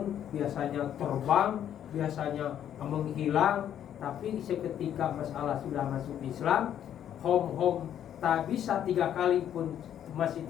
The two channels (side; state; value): right; quieter; 10.1 dB